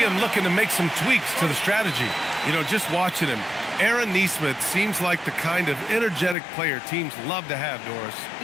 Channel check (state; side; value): drops out; right; at 6.4 s